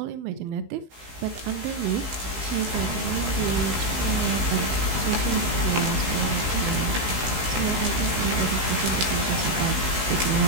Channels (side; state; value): left; late; 15 ms